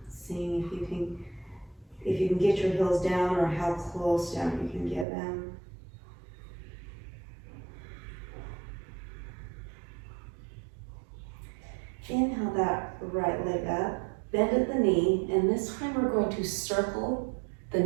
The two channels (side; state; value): left; drops out; at 5.1 s